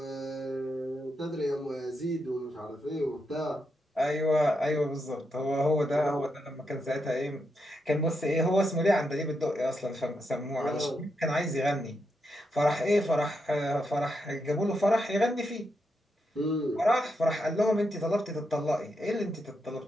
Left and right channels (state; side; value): normal; both; correlation 0.83